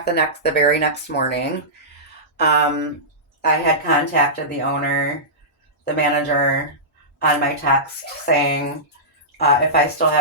the very next morning. Um, I had contacted the owner, the manager, on my text saying, if I still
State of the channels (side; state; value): both; normal; correlation -0.17